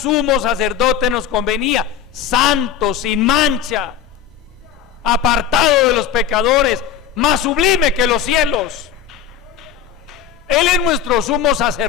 sacerdote nos convenía, santo, sin mancha, apartado de los pecadores, más sublime que los cielos. Él es nuestro sumo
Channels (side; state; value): right; quieter; 8.9 dB